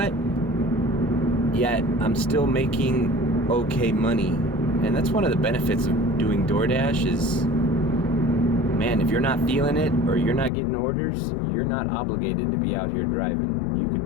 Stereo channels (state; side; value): drops out; right; at 10.5 s